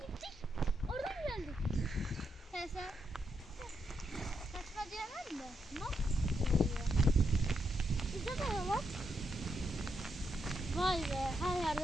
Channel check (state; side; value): normal; both; correlation 0.81